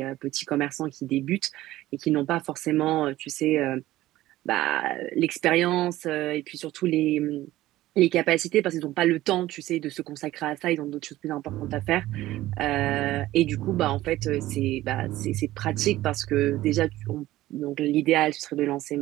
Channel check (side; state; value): left; quieter; 15.8 dB